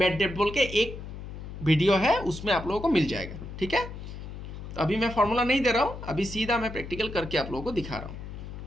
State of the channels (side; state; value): left; noise; hum, 10 dB below the sound